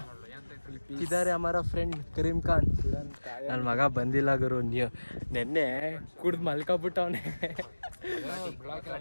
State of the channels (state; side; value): inverted; both; correlation -1.00